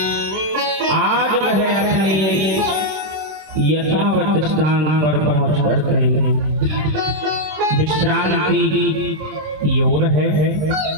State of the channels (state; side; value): late; left; 27 ms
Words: आज वह अपने यथावत स्थान पर पहुंच करके विश्रांति की ओर है।